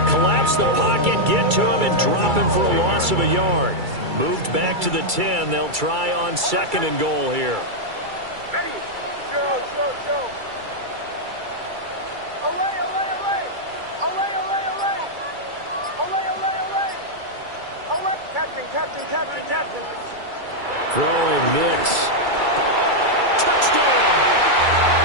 collapse the pocket, get to him, and drop him for a loss of a yard. Moved back to the 10. They'll try on 2nd and goal here. Ready? Go. Away. Captain. Throwing Nix. Touchdown!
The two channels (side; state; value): left; late; 2.3 ms